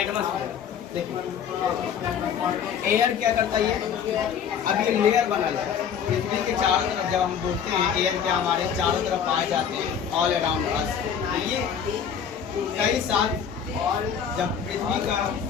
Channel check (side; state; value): right; quieter; 7.8 dB